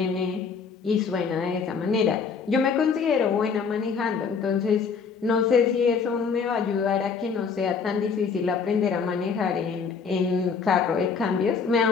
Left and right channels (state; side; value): quieter; right; 5.6 dB